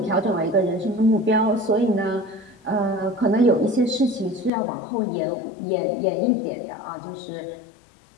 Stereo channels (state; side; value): drops out; right; at 4.5 s